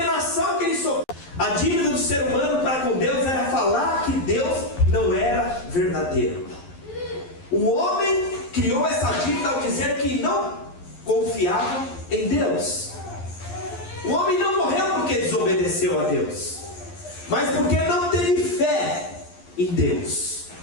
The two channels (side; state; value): right; late; 11 ms